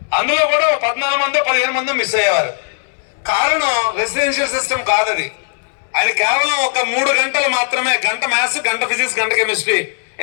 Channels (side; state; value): right; silent; 68 dB below the other